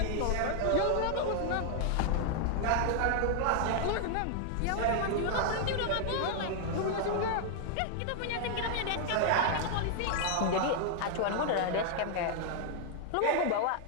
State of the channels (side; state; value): both; different; correlation 0.00